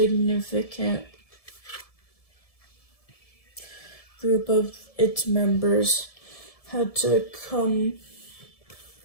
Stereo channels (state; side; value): late; right; 1.7 ms